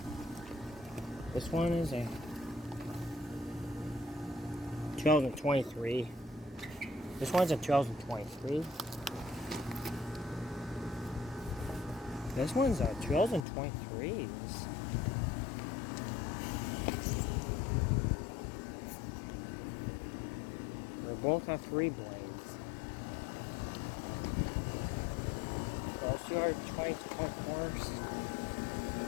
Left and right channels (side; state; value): right; drops out; at 13.5 s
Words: This one is a 2023. This one's a 2023. This one's a 2023. They both have 3 blades. Let's see our 2024s.